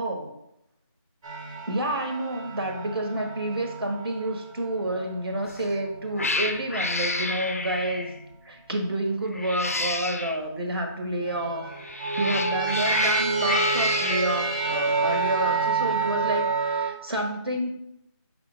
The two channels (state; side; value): inverted; both; correlation -0.37